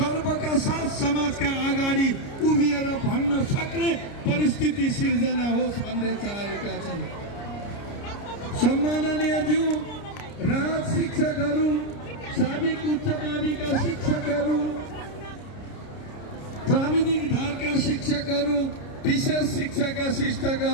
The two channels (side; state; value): right; late; 30 ms